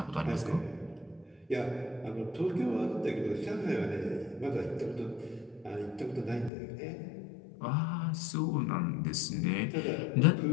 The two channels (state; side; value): drops out; right; at 6.5 s